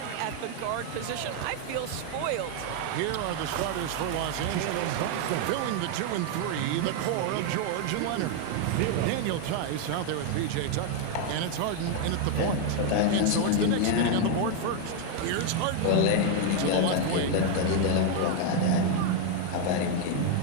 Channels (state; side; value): different; both; correlation 0.00